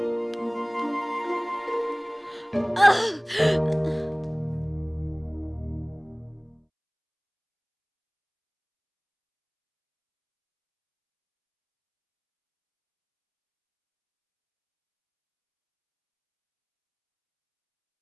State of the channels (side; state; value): both; identical; correlation 1.00